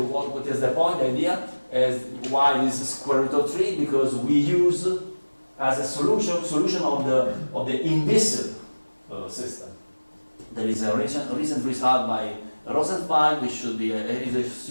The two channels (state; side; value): inverted; both; correlation -1.00